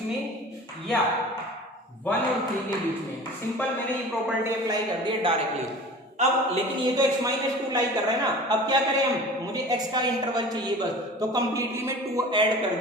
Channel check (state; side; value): normal; both; correlation 0.40